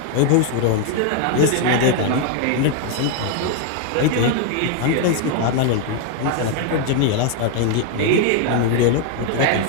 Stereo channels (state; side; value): different; both; correlation 0.00